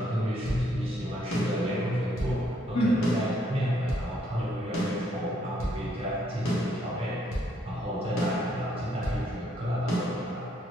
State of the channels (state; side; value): normal; both; correlation 0.71